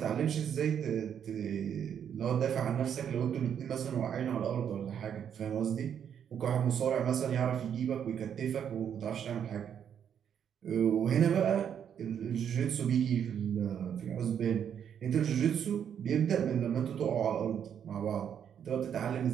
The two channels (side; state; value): left; quieter; 8.5 dB